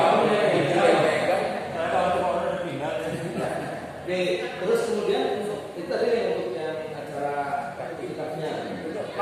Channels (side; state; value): both; identical; correlation 1.00